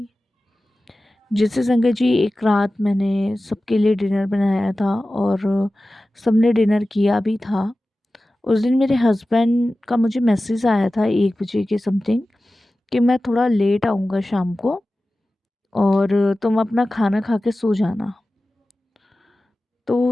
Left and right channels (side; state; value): both; normal; correlation 0.95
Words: जैसे संगत जी एक रात मैंने सबके लिए डिनर बनाया था और सबने डिनर किया भी था। उस दिन मेरे हस्बैंड का मुझे मैसेज आया था 1 बजे के समथिंग कि मैं थोड़ा लेट आऊँगा शाम को और तुम अपना खाना खा के सो जाना।